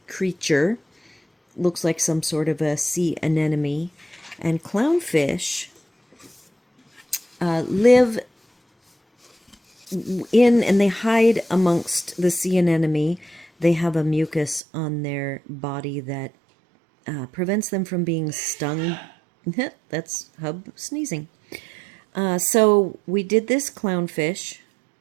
creature looks like some sort of a sea anemone. And clownfish live in and they hide amongst the sea anemone. They have a mucus on their body that prevents them from being stung. That's Hub sneezing. So we did this clownfish.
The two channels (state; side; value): drops out; left; at 14.6 s